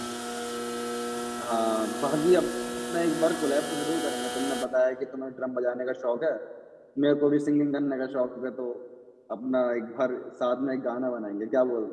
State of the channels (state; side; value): identical; both; correlation 1.00